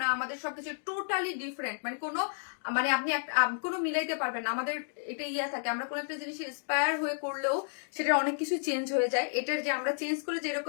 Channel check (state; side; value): silent; right; digital silence